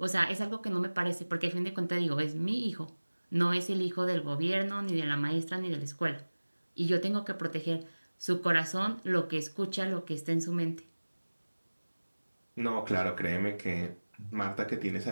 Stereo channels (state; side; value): inverted; both; correlation -1.00